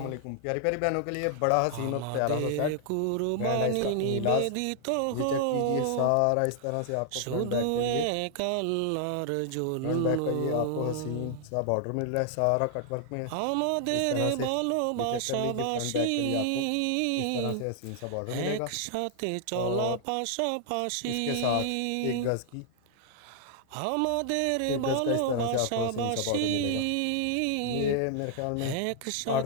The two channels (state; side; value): different; both; correlation 0.00